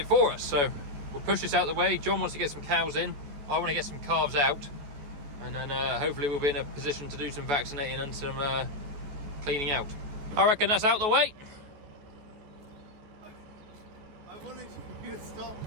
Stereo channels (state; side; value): late; left; 14 ms